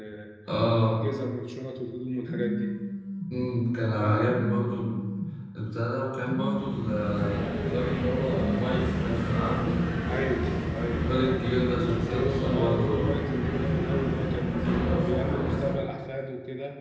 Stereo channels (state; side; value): identical; both; correlation 1.00